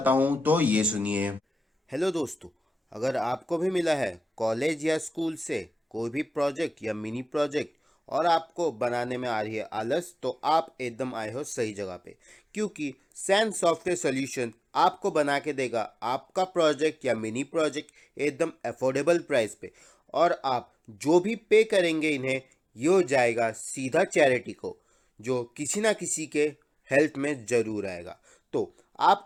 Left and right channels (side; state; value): both; normal; correlation 0.97